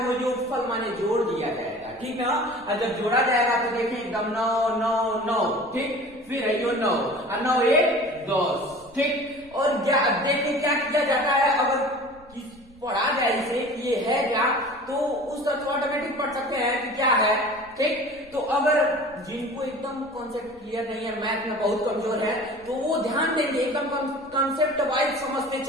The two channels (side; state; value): left; noise; rumble, 26 dB below the sound